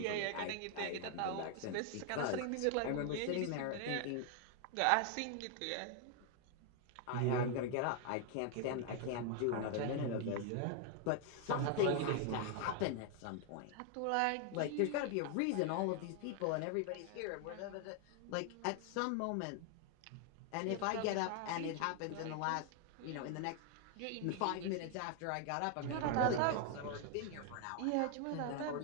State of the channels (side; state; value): both; different; correlation 0.00